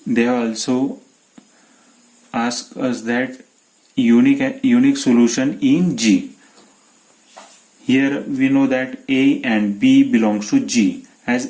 They also ask us that unique solution in G. Here we know that A and B belongs to G.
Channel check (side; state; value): both; identical; correlation 1.00